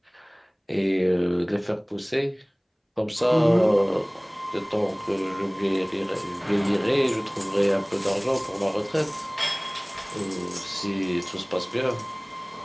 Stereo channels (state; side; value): identical; both; correlation 1.00